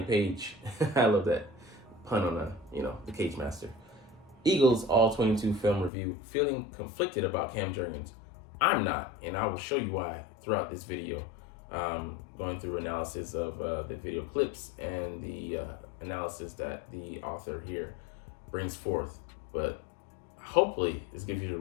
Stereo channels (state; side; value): drops out; right; at 5.9 s